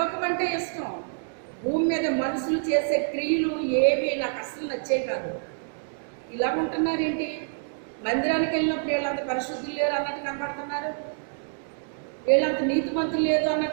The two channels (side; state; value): left; silent; digital silence